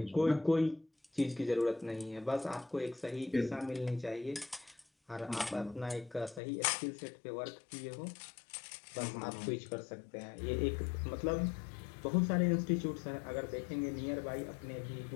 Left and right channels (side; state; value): right; drops out; at 6.4 s